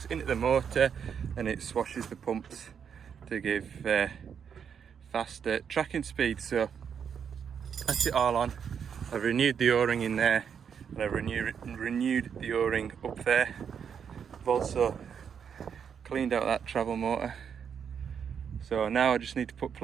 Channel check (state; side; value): quieter; left; 7.4 dB